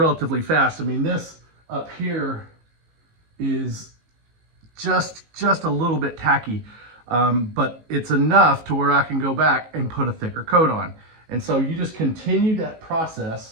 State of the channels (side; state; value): left; late; 19 ms